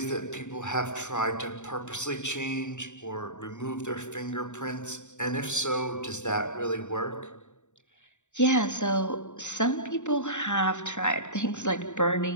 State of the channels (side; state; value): right; late; 0.84 ms